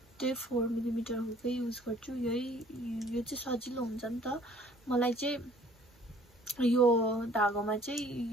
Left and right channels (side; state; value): both; normal; correlation 0.56